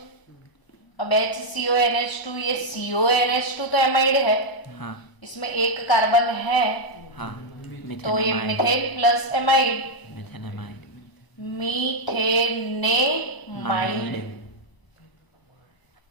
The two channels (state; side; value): late; right; 1.0 ms